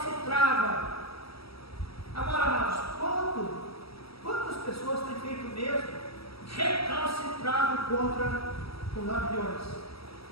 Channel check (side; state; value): right; late; 0.76 ms